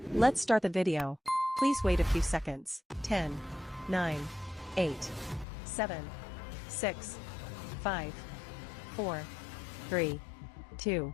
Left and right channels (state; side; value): drops out; right; at 5.5 s